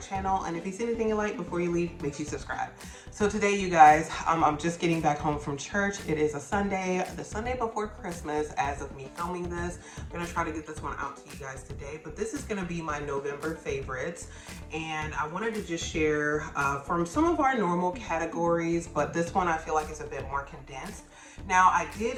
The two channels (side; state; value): both; identical; correlation 1.00